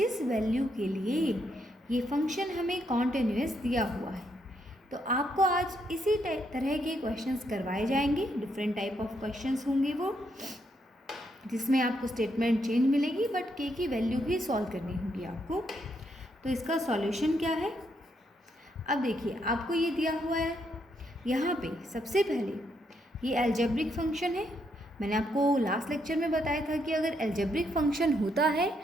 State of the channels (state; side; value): normal; both; correlation 0.77